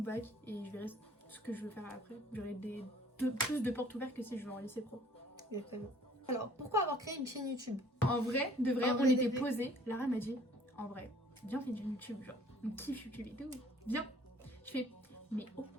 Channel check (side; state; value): both; normal; correlation 0.56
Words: et je verrai ce que je veux faire après. J'aurai plus de portes ouvertes que si je vais en lycée pro. Exactement. Alors, pourquoi avoir créé une chaîne YouTube? En vrai, de vrai, En on vrai, était de vrai. posés. Lara m'a dit, en vrai, viens, on fait du YouTube. Genre, on kiffe YouTube et tout. Viens. Je fais, mais